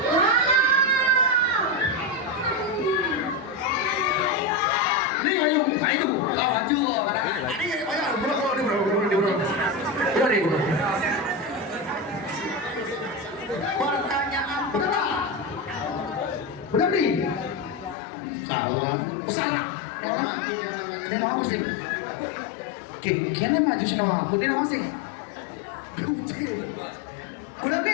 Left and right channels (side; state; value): right; drops out; at 17.9 s